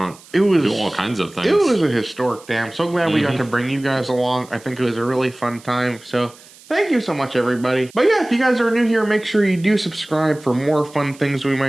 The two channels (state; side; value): noise; right; hiss, 23 dB below the sound